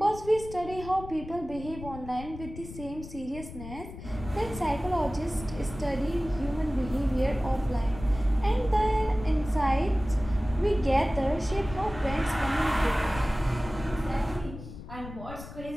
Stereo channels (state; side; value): noise; left; rumble, 13 dB below the sound